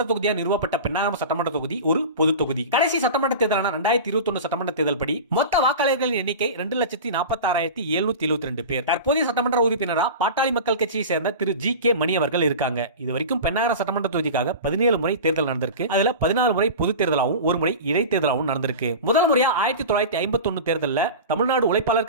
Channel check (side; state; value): both; inverted; correlation -0.30